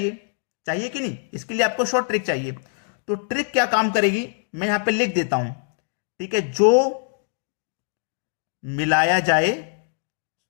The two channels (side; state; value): right; silent; digital silence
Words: चाहिए कि नहीं? इसके लिए आपको शॉर्ट ट्रिक चाहिए। तो ट्रिक क्या काम करेगी, मैं यहां पे लिख देता हूं। ठीक है, जो मिलाया जाए,